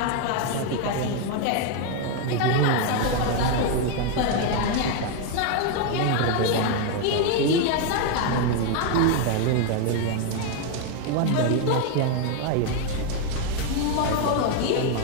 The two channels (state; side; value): different; both; correlation 0.01